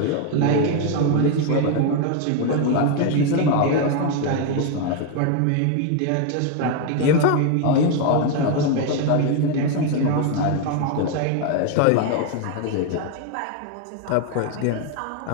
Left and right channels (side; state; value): both; different; correlation 0.01